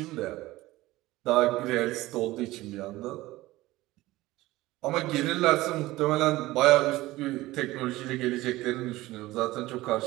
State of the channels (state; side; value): quieter; left; 18.1 dB